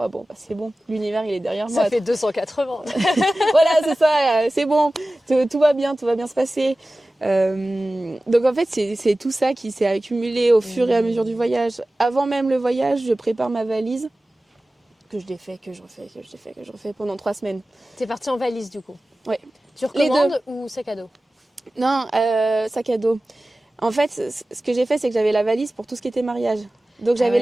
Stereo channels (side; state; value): both; normal; correlation 0.96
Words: bon, c'est bon, l'univers, il est derrière moi. Ça fait 280. Voilà, c'est ça, c'est bon, tout va bien se passer. Donc en fait, c'est tout ça qui s'est accumulé au fur et à mesure du voyage. Avant même le voyage, je prépare ma valise, que je défais, que je refais pendant 3 semaines. T'es partie en valise, du coup? Ouais. Tu recommandes ou sac à dos? Non, sac à dos. En fait, ce que j'ai fait, c'est que j'avais la valise pour tout ce qui était mariage. Donc j'avais